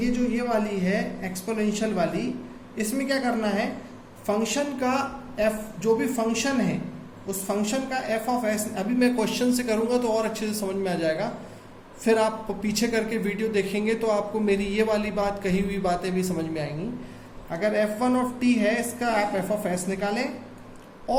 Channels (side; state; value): both; identical; correlation 1.00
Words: ये वाली है एक्सपोनेंशियल वाली, इसमें क्या करना है, फंक्शन का f, जो भी फंक्शन है उस फंक्शन का f ऑफ s, अभी मैं क्वेश्चन से करूंगा तो और अच्छे से समझ में आ जाएगा, फिर आप पीछे करके वीडियो देखेंगे तो आपको मेरी ये वाली बात, कही हुई बातें भी समझ में आएंगी। अगर f1 ऑफ t है, इसका आप f ऑफ s निकालें,